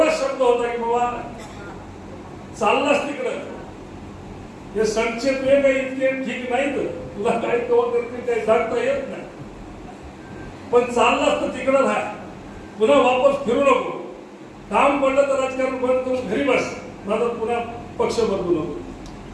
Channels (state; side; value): identical; both; correlation 1.00